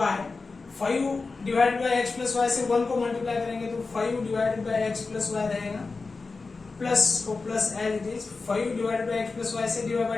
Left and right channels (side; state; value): right; quieter; 4.1 dB